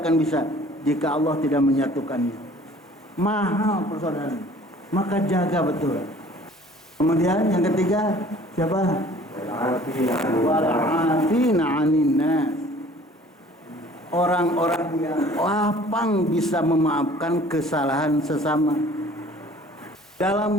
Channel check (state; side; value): normal; both; correlation 0.51